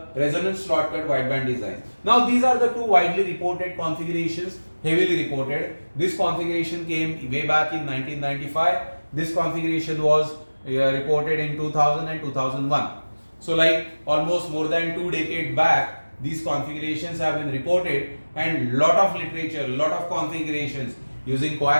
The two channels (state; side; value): inverted; both; correlation -1.00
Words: resonant slot cut wideband design. Now these are the two widely reported configurations, heavily reported. This configuration came way back in 1995. This configuration was reported in 2000 and 2001. So almost more than 2 decades back, these configurations have been reported, and lot of literature, lot of configurations using